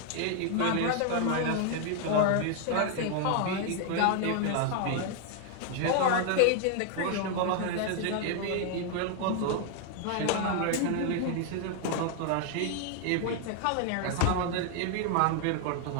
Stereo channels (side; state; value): both; different; correlation 0.00